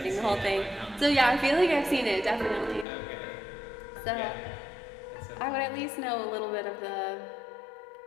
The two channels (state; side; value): drops out; right; at 2.9 s